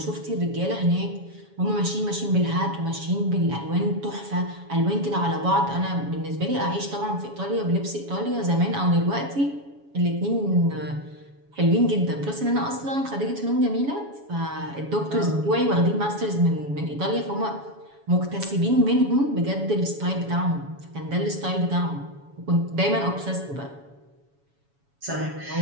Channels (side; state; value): left; late; 7.1 ms